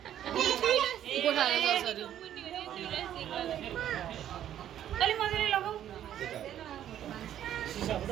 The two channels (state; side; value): quieter; left; 11.0 dB